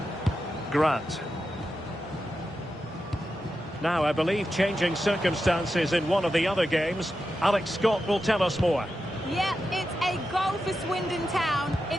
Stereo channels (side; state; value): both; normal; correlation 0.89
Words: Grant. Now, I believe changing circumstances in one of the other games. Alex Scott will tell us more. Yeah, it's a goal for Swindon Town.